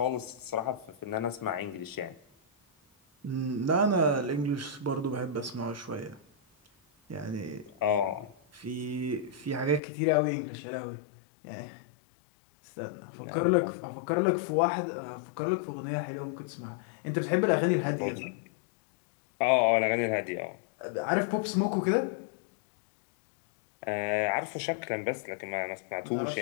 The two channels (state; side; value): drops out; right; at 9.8 s